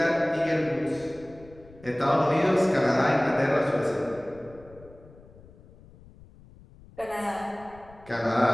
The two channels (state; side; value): noise; left; rumble, 23 dB below the sound